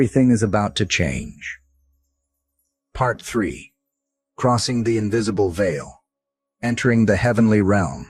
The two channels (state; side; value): identical; both; correlation 1.00